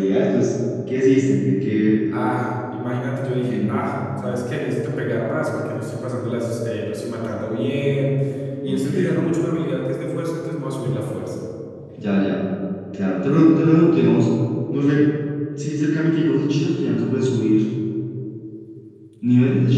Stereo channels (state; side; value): identical; both; correlation 1.00